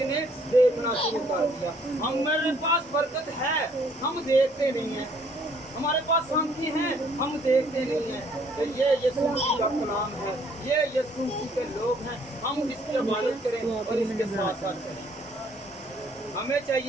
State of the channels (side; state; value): both; normal; correlation 0.63